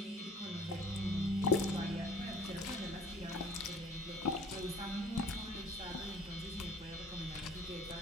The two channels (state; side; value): normal; both; correlation 0.51